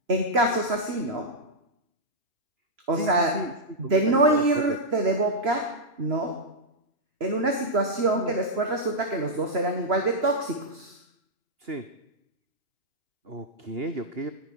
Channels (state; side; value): late; left; 3.0 ms